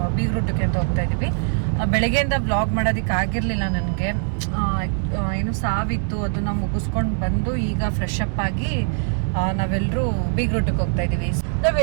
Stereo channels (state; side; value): silent; left; 64 dB below the other